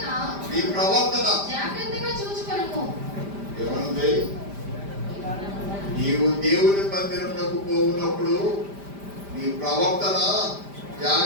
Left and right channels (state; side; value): late; left; 5.0 ms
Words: ప్రవర్తన జాగ్రత్తగా చూచుకొనుము. ఏమనుంది? నీవు దేవుని మందిరమునకు పోవునప్పుడు నీ ప్రవర్తన